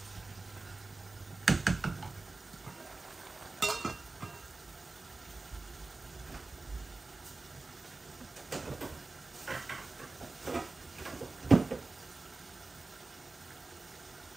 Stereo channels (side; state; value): left; quieter; 3.4 dB